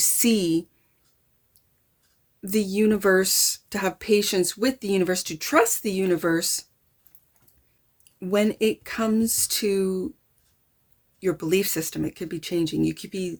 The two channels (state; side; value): identical; both; correlation 1.00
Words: the universe, to have patience with the universe, to trust the universe when it comes to your belief system. It could be changing. You could be